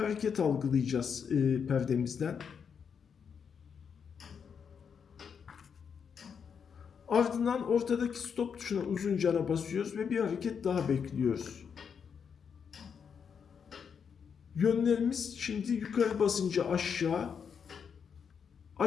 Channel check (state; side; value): quieter; right; 6.8 dB